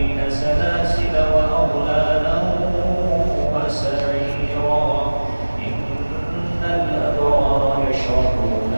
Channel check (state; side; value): inverted; both; correlation -1.00